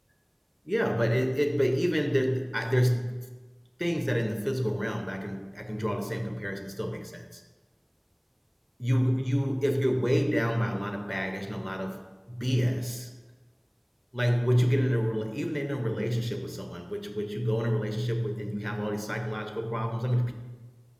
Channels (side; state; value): both; identical; correlation 1.00